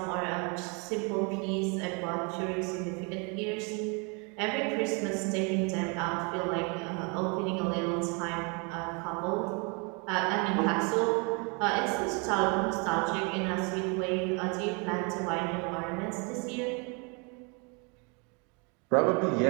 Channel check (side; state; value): left; quieter; 33.0 dB